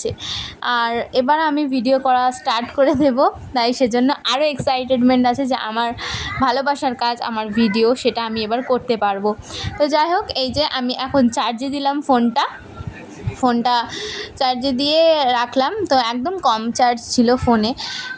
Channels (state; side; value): identical; both; correlation 1.00